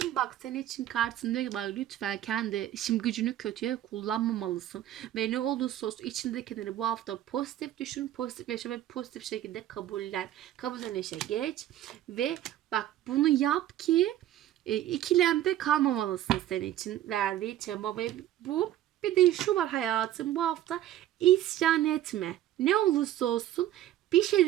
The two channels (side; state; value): left; quieter; 12.8 dB